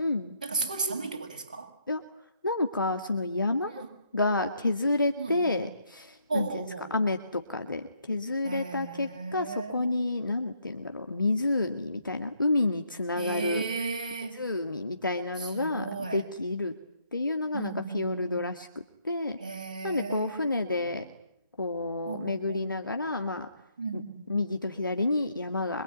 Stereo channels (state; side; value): inverted; both; correlation -0.71